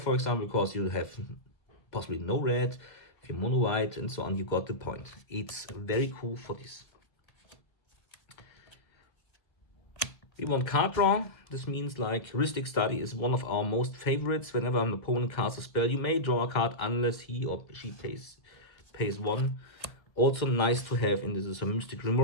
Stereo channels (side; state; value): right; late; 2.0 ms